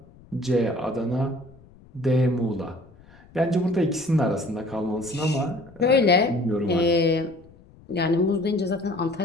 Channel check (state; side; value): noise; left; rumble, 25 dB below the sound